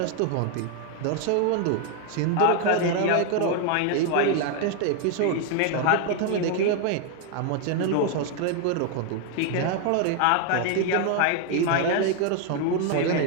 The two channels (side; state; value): both; different; correlation 0.01